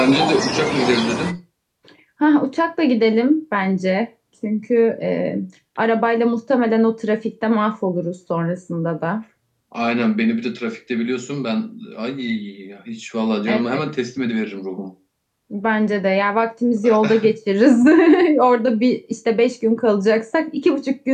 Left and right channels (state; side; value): identical; both; correlation 1.00